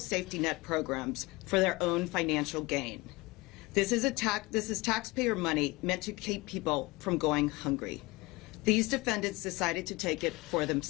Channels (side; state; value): right; quieter; 23.0 dB